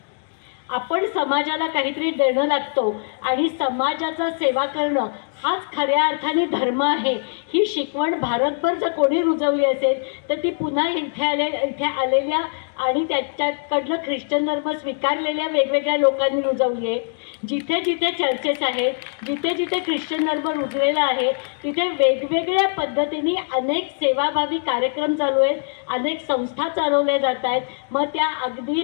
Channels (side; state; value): right; silent; digital silence